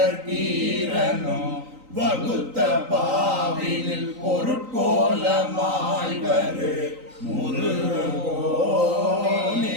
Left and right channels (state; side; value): late; left; 3.9 ms